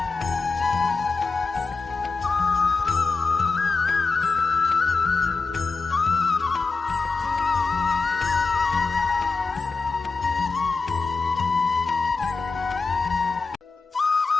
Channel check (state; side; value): quieter; right; 4.2 dB